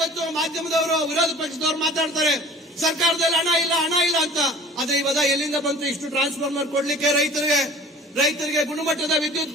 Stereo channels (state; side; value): normal; both; correlation 0.45